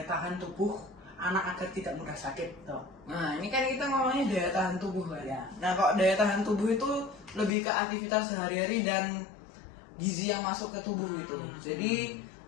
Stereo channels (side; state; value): right; drops out; at 7.5 s